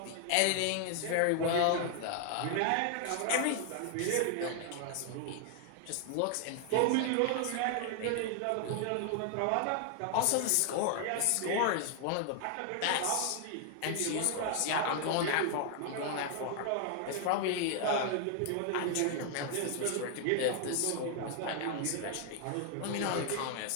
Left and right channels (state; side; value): different; both; correlation 0.00